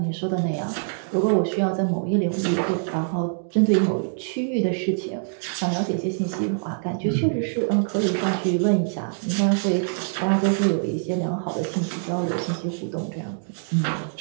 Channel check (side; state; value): left; silent; digital silence